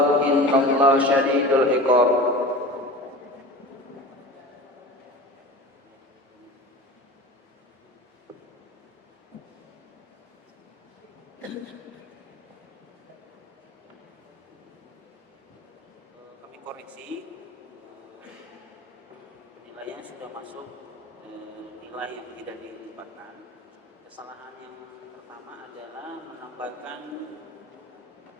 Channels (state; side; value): normal; both; correlation 0.34